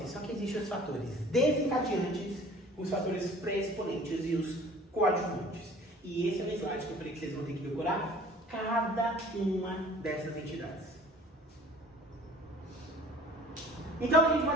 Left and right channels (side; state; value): both; normal; correlation 0.49